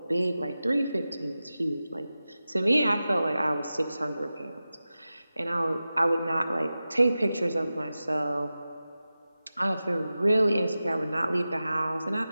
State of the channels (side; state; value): both; inverted; correlation -0.94